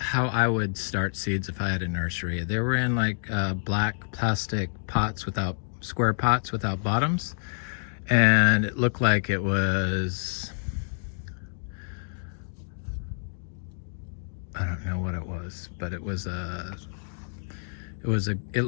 I would start seeds if I had a nursery. They were in like black plastic pots without, square pots without bottoms, and it looked like it was, I don't know what it was, but it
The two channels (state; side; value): silent; right; digital silence